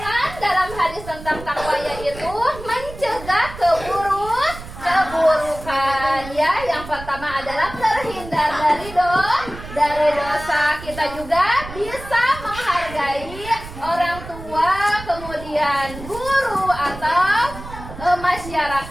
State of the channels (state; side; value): noise; right; rumble, 13 dB below the sound